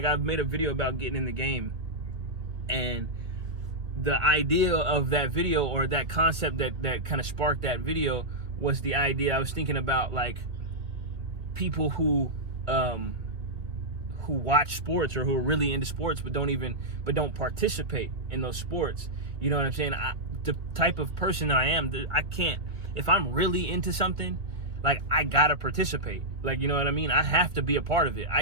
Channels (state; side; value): late; left; 2.4 ms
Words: I've made a video about getting in the game, and the idea of that video, or that concept that kind of sparked that video, was the idea I was thinking about, like, people who watch sports, or who are really into sports but don't participate in those sports. You know what I'm saying? The type of person that I am, I can't, if I'm really into something, like, I gotta participate. Like, you know what I mean? I have to be a part of it.